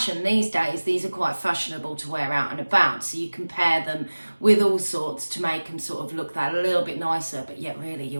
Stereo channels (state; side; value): inverted; both; correlation -1.00